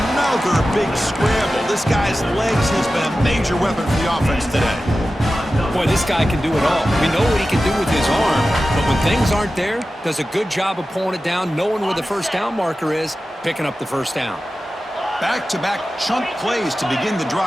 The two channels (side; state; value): both; normal; correlation 0.94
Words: big scramble. This guy's legs has been a major weapon for the offense today. Boy, this guy can do it all. We know what he can do with his arm, but when things aren't there, does a good job of pulling it down, knowing where the first down marker is, picking up the first down. Back-to-back chunk plays to begin the